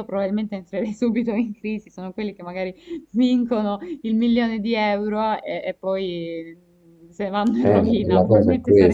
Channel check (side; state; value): both; identical; correlation 1.00